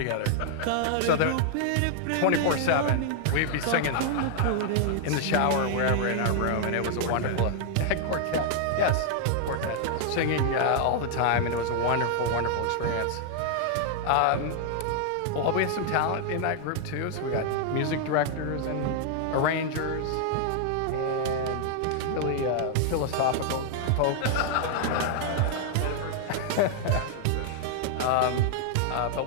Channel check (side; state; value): both; different; correlation -0.01